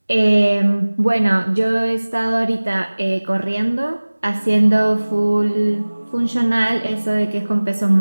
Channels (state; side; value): inverted; both; correlation -1.00